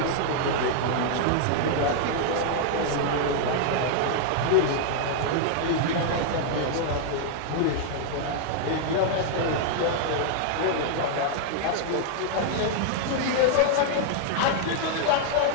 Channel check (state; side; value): different; both; correlation -0.01